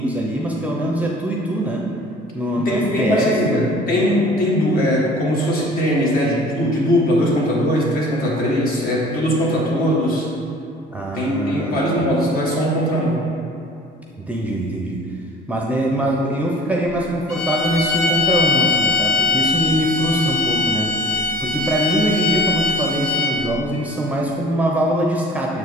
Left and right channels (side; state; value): both; normal; correlation 0.47